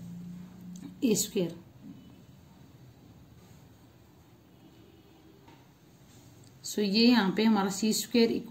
a²। सो ये यहाँ पे हमारा c²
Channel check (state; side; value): identical; both; correlation 1.00